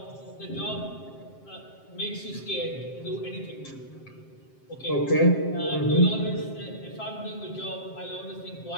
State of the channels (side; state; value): right; late; 7.6 ms